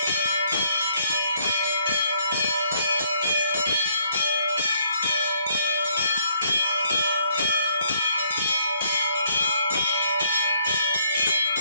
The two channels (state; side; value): inverted; both; correlation -0.68